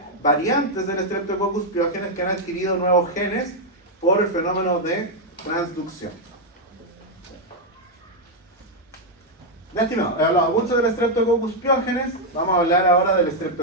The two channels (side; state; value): both; normal; correlation 0.00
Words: variantes del Streptococcus pyogenes que han adquirido nuevos genes por el fenómeno de transducción. Ya, estimado, he hablado mucho del Streptococcus pyogenes, vamos a hablar ahora del